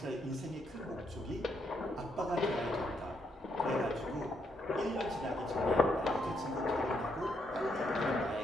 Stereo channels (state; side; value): normal; both; correlation 0.76